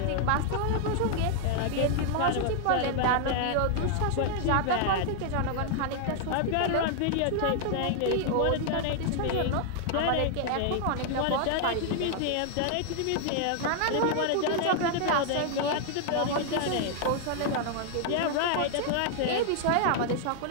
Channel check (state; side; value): different; both; correlation 0.00